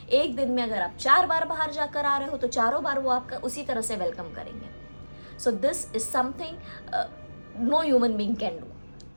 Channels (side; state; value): both; inverted; correlation -1.00